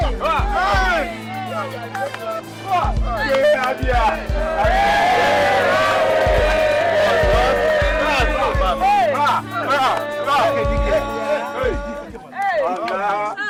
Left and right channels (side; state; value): both; identical; correlation 1.00